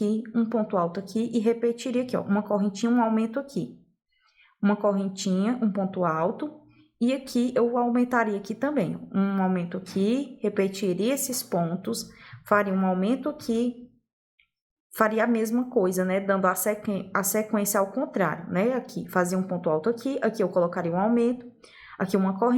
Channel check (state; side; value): identical; both; correlation 1.00